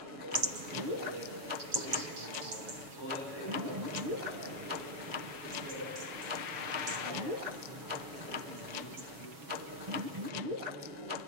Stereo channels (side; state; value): left; late; 7.2 ms